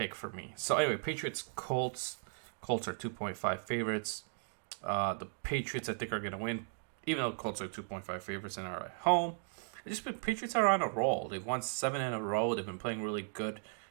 for me. So anyway, Patriots Colts. Colts are 2.5 favorites. The Patriots I think are going to win, even though Colts are 2.5 favorites and are at home. Patriots are on a roll. They've won 7 in a row. They've been playing really good.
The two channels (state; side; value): silent; left; digital silence